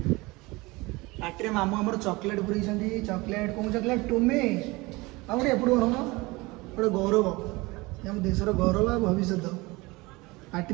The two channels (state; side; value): quieter; left; 22.9 dB